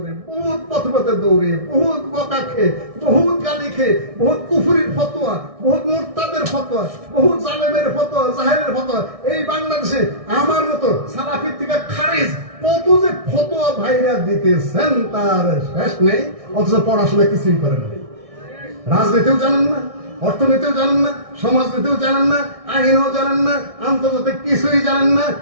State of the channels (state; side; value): late; left; 1.6 ms